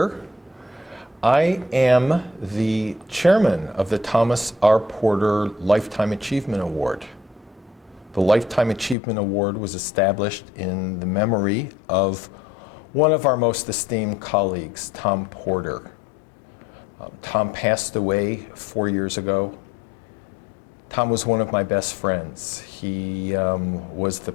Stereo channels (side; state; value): right; drops out; at 9.0 s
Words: I am the chairman of the Thomas R. Porter Lifetime Achievement Award. The Lifetime Achievement Award was established in the memory of one of our most esteemed colleagues, Tom Porter. Tom passed away 4 years ago. Tom was one of my best friends. He was the